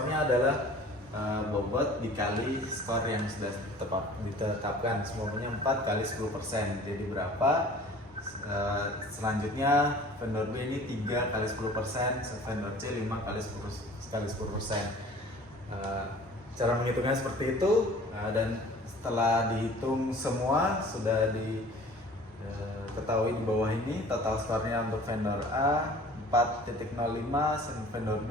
adalah bobot dikali skor yang sudah ditetapkan, semuanya 4 kali 10%. Jadi berapa? Selanjutnya vendor B ini 3 kali 10%, vendor C 5 kali 10%. Cara menghitungnya seperti itu, dan setelah dihitung semua sudah diketahui di bawah ini total skornya untuk vendor A 4.05, vendor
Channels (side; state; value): both; normal; correlation 0.47